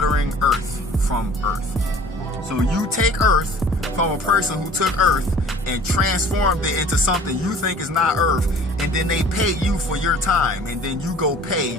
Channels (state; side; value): normal; both; correlation 0.48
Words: earth from earth. So you take earth from a person who took earth and transformed it into something you think is not earth, and then they pay you for your time, and then you go pay